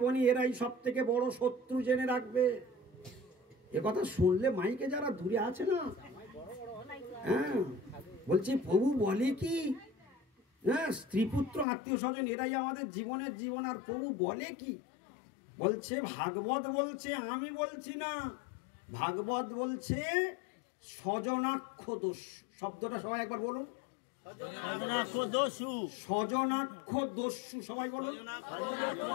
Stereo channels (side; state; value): right; drops out; at 11.7 s